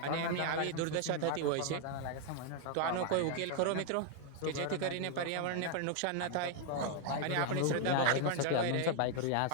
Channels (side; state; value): both; different; correlation 0.01